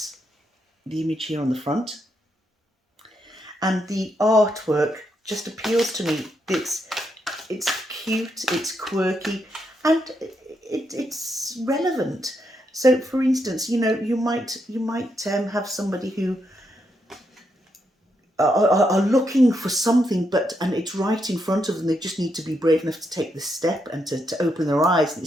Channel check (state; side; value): normal; both; correlation 0.80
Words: image here on the front, and the artwork just appeals to me. It's cute, it's quirky, and it's relevant. So, for instance, you know, you might have somebody who are looking for something, and it's right in front of them. They just need to be brave enough to take the step and to open their eyes and